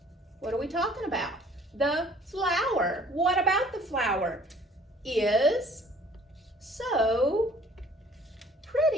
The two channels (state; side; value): normal; both; correlation 0.54